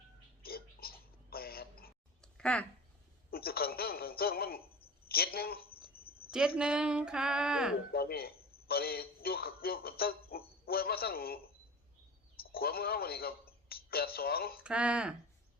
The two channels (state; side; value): normal; both; correlation 0.33